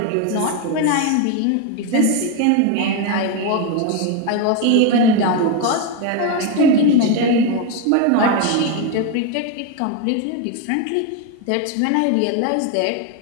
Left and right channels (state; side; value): different; both; correlation 0.02